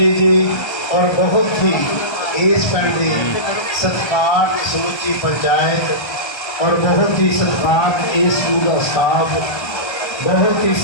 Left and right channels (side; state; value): right; late; 1.3 ms